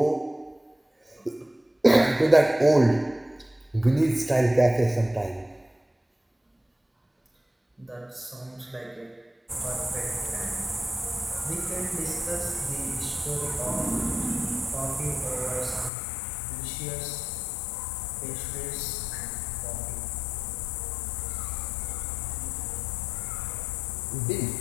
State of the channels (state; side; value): drops out; right; at 15.9 s